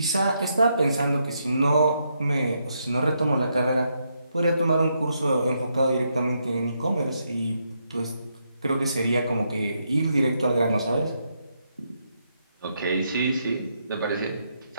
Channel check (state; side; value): inverted; both; correlation -0.79